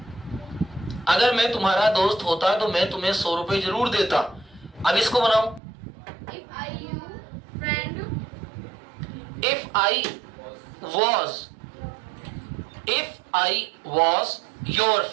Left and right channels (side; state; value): left; drops out; at 5.6 s